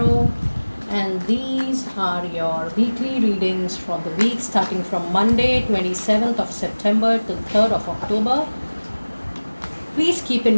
and these are your weekly readings for the week starting from Monday 27th of September to 3rd of October. Please keep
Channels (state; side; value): inverted; both; correlation -1.00